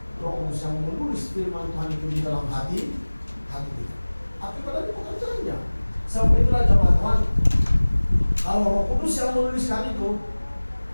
yang menulis firman Tuhan itu di dalam hati kita. Akibat dari pekerjaannya. Sebab itulah jemaat Tuhan, kalau Roh Kudus yang menuliskan itu,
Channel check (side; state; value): both; inverted; correlation -1.00